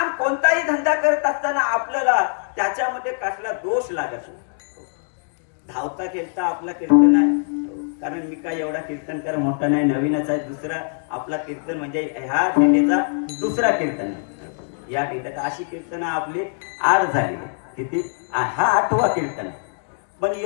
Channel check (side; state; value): right; silent; digital silence